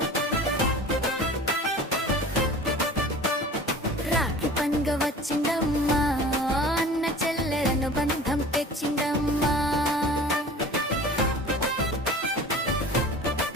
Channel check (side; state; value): both; normal; correlation 0.40